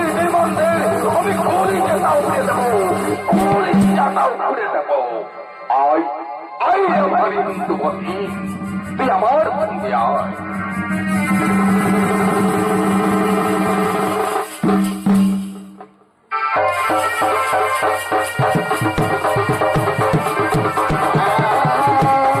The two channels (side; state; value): both; identical; correlation 1.00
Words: আমি কলিজাটা উড়ে দেবো, কলিজাটা উড়ে দেবো। আয় আয় আমার হিন্দু বহিন, তুই আমার সঙ্গে আয়।